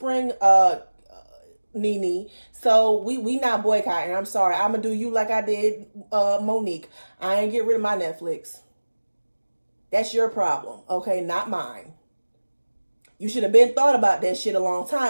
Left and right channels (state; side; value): inverted; both; correlation -1.00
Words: Nene. So we not boycotting. I'm sorry. I'm gonna do you like I did Monique. I ain't get rid of my Netflix. That's your problem, okay? Not mine. You should have been thought about that shit a long